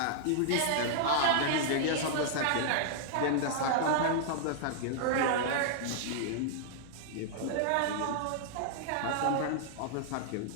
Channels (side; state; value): both; different; correlation -0.01